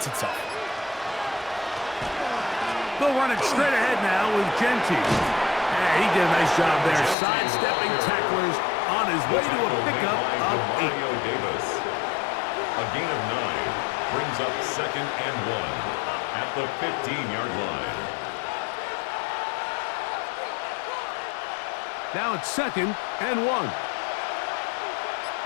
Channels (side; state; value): right; drops out; at 7.2 s